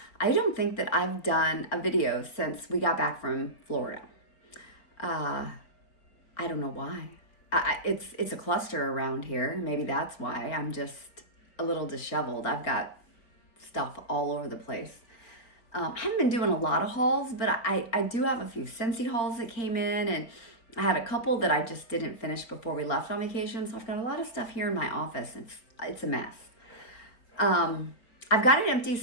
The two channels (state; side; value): late; right; 4.7 ms